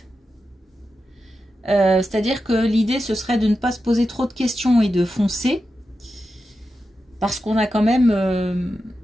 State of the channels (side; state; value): both; normal; correlation 0.90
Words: C'est-à-dire que l'idée, ce serait de ne pas se poser trop de questions et de foncer. Parce qu'on a quand même,